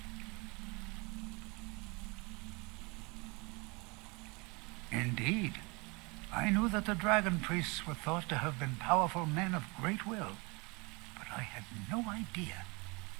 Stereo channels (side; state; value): left; quieter; 28.1 dB